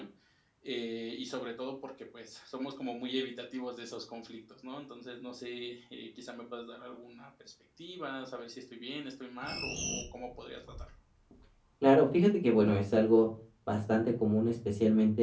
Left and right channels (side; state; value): both; identical; correlation 1.00